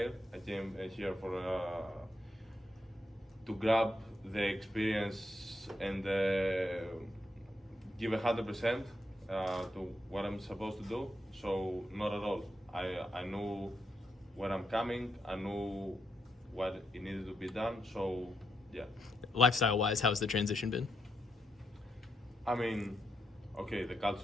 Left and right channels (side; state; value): both; normal; correlation 0.80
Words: I came here to grab the experience and give 100% to what I'm supposed to do. So not at all. I knew where I'm coming. I knew what it needed to be done. So yeah. Lifestyle-wise, how's the transition been? I mean, okay, the